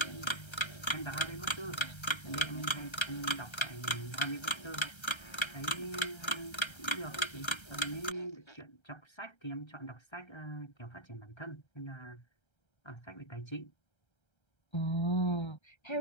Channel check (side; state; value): right; late; 1.3 ms